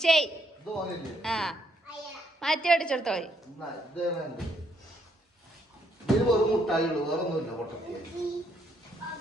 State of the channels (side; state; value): both; normal; correlation 0.72